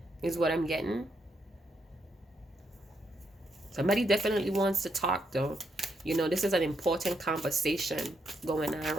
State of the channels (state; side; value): normal; both; correlation 0.78